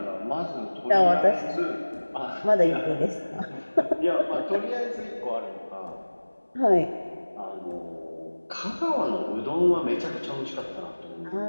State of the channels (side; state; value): both; inverted; correlation -1.00